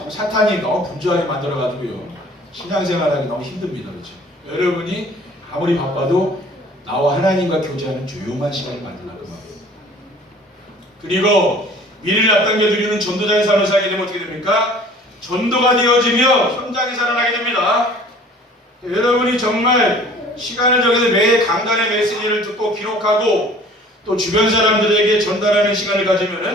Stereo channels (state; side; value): normal; both; correlation 0.50